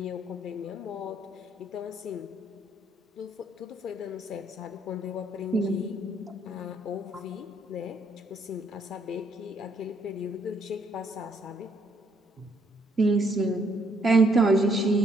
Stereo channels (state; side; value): normal; both; correlation 0.69